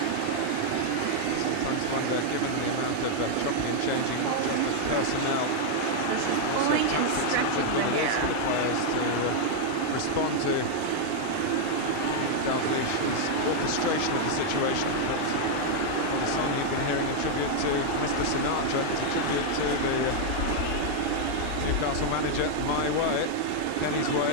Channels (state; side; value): different; both; correlation 0.00